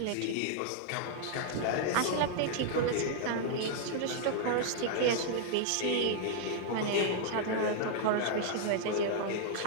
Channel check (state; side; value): different; both; correlation -0.01